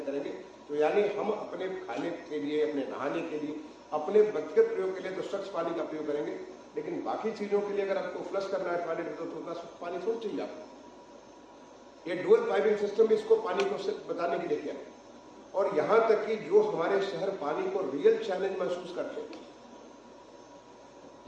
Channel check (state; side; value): identical; both; correlation 1.00